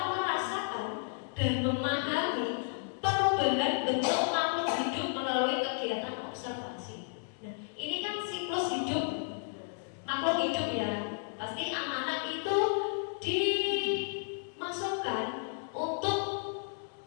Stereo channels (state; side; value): silent; right; digital silence